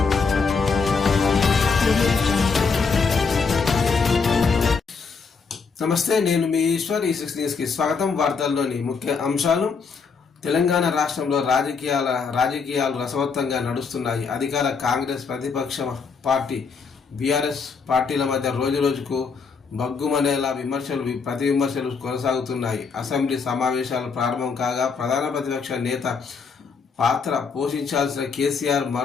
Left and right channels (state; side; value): quieter; right; 5.2 dB